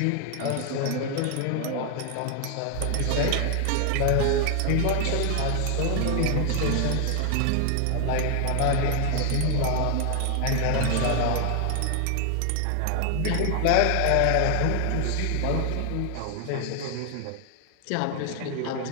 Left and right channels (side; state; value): both; different; correlation 0.00